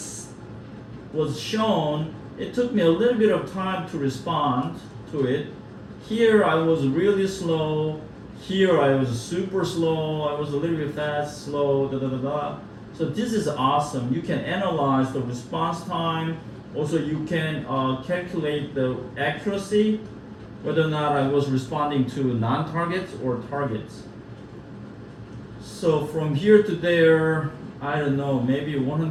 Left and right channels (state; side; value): identical; both; correlation 1.00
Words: was shown, it took me a little bit of time to respond to it. Here I was really slow. Here I was super slow. I was a little bit fast, slow, da da da da. So this is awesome. You can analyze the response time. Also, you can calculate the accuracy, whether or not I was responding to non-targets or targets. So from here to there, I don't know, maybe